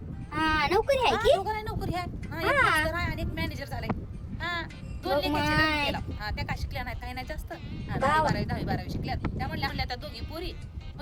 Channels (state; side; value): identical; both; correlation 1.00